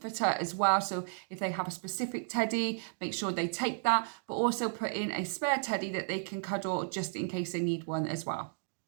as well, so if they have a specific teddy, make sure they take that, but also put in a spare teddy that they can cuddle just in case they need one as well.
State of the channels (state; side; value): silent; left; digital silence